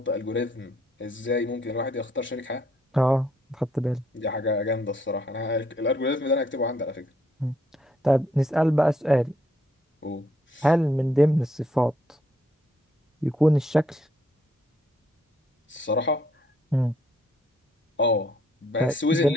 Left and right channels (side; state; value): both; normal; correlation 0.71